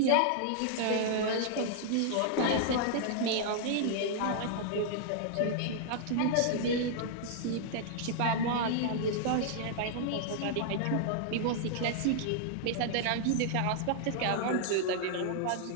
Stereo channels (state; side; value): different; both; correlation -0.01